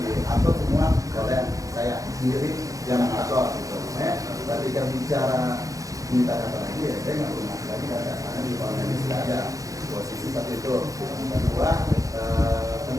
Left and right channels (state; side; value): late; left; 0.16 ms